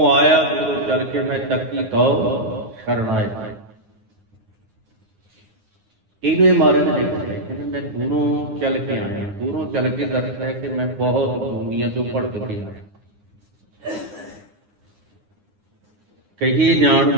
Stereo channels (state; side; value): late; left; 9.8 ms